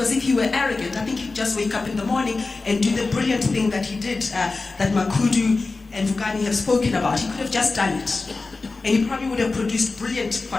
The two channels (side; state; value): right; quieter; 3.7 dB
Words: if he were arrogant, I think he'd just wake up in the morning and do the brilliant thing that he did, that Makudu and Vukani have spoken about. He could have just done it. And he probably would have produced brilliant